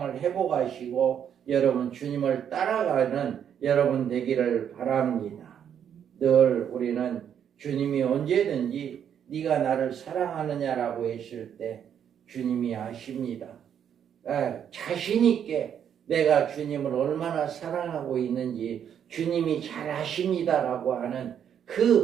회복하시고 여러분 주님을 따라가는 여러분 되기를 바랍니다. 늘 우리는 주님이 언제든지 네가 나를 사랑하느냐라고 했을 때 주님이 아십니다. 자신 있게 내가 주님을 얼마나 사랑하고 있는지 주님이 잘 아십니다라고 하는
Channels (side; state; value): left; quieter; 8.8 dB